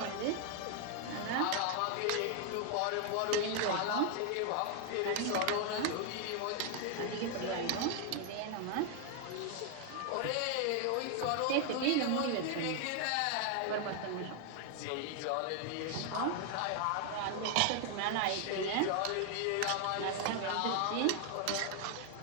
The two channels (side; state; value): both; different; correlation 0.00